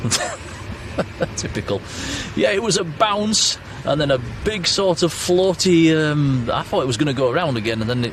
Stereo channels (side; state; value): both; identical; correlation 1.00